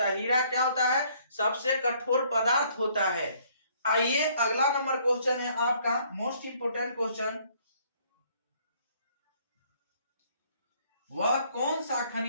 है। हीरा क्या होता है, सबसे कठोर पदार्थ होता है। आइए अगला नंबर क्वेश्चन है आपका, मोस्ट इंपोर्टेंट क्वेश्चन। वह कौन सा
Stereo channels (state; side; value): inverted; both; correlation -0.63